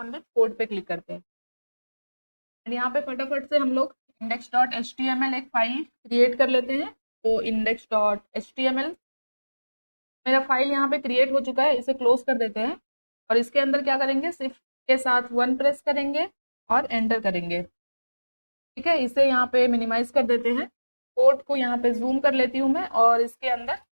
विथ कोड पे क्लिक करते हैं। यहाँ पे फटाफट से हम लोग index.html एक फाइल क्रिएट कर लेते हैं। तो index.html मेरा फाइल यहाँ पे क्रिएट हो चुका है, इसे क्लोज कर देते हैं। और इसके अंदर क्या करेंगे, शिफ्ट के साथ 1 प्रेस करेंगे और एंटर करेंगे। ठीक है, इसे यहाँ पे मिनिमाइज कर देते हैं। कोड को यहाँ पे जूम कर लेती हूँ मैं, और इसके अंदर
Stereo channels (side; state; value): both; inverted; correlation -1.00